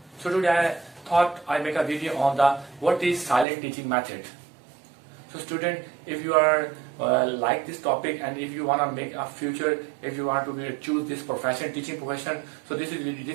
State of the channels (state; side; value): drops out; left; at 3.5 s